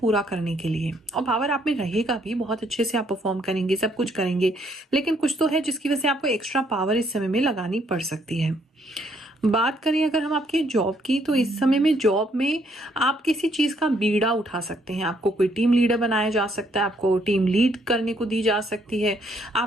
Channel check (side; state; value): both; normal; correlation 0.69